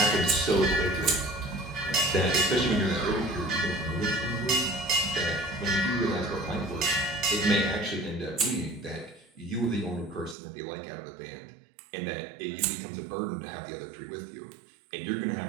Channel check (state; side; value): drops out; left; at 10.4 s